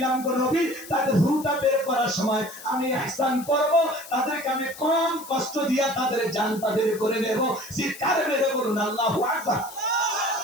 গো নবী তাদের রূহটা বের করার সময় আমি ইহসান করব, তাদেরকে আমি কম কষ্ট দিয়া তাদের জানটা বের করে নেব। চিৎকার মেরে বলুন আল্লাহু আকবার।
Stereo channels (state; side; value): noise; left; hiss, 16 dB below the sound